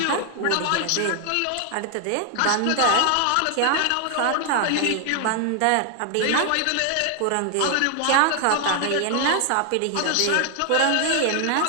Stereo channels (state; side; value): different; both; correlation 0.00